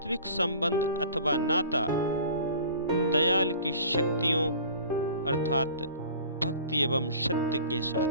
संबंध अथवा नाता दयाल की शक्तियों अर्थात भक्ति एवं सत्य के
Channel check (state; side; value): inverted; both; correlation -0.45